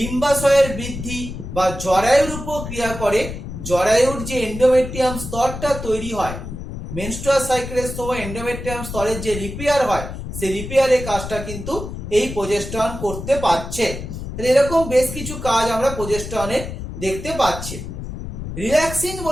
বৃদ্ধি বা জরায়ুর উপর ক্রিয়া করে, জরায়ুর যে এন্ডোমেট্রিয়াম স্তরটা তৈরি হয় মেনস্ট্রুয়াল সাইকেলের সময় এন্ডোমেট্রিয়াম স্তরের যে রিপেয়ার হয় সেই রিপেয়ারের কাজটা কিন্তু এই প্রোজেস্টেরন করতে পারছে। এরকম বেশ কিছু কাজ আমরা প্রোজেস্টেরনের দেখতে পাচ্ছি। রিল্যাক্সিন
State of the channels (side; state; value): left; noise; rumble, 8 dB below the sound